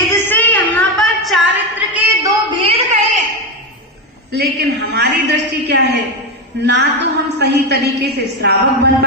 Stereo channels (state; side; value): normal; both; correlation 0.13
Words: से यहाँ पर चारित्र के 2 भेद कहे। लेकिन हमारी दृष्टि क्या है? ना तो हम सही तरीके से श्रावक बन